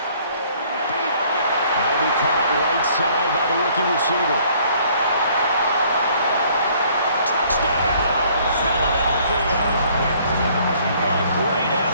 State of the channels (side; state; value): both; inverted; correlation -0.60